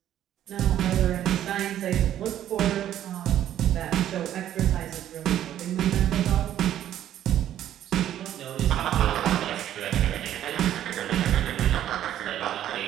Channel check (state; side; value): quieter; left; 11.6 dB